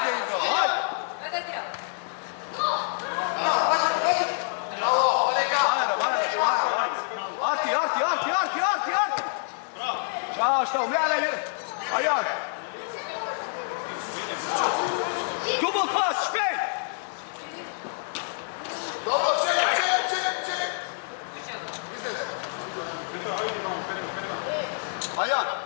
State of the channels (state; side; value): silent; right; digital silence